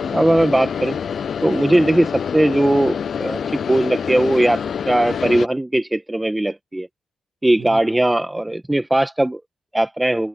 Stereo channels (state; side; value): normal; both; correlation 0.97